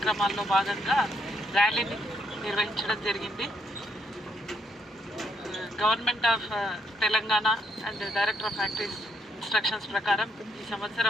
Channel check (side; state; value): both; normal; correlation 0.74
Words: భాగంగా ర్యాలీని నిర్వహించడం జరిగింది। Government of Telangana and director of factories instructions ప్రకారం ఈ